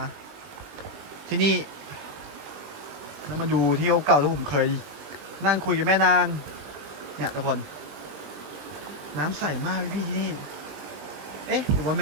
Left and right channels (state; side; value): late; left; 20 ms